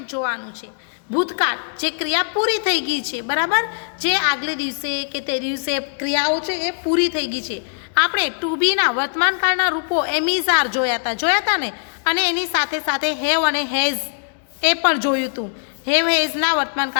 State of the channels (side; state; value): right; silent; digital silence